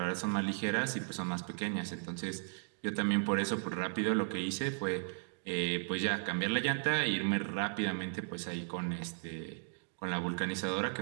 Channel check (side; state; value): left; silent; digital silence